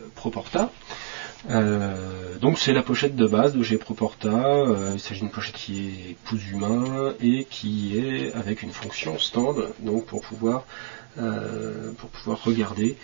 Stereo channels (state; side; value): silent; left; digital silence